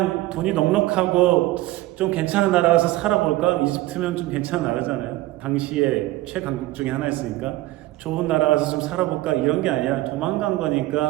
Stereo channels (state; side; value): quieter; left; 17.5 dB